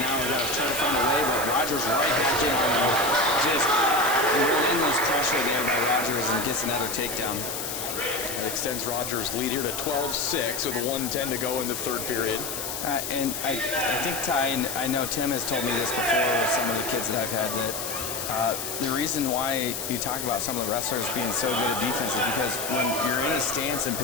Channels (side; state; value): left; noise; hiss, 5 dB below the sound